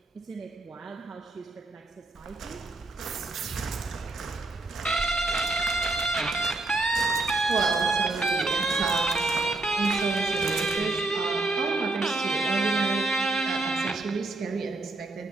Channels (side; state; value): left; quieter; 3.0 dB